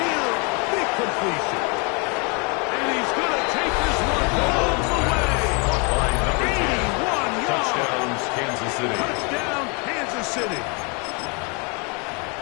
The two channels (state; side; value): quieter; right; 33.1 dB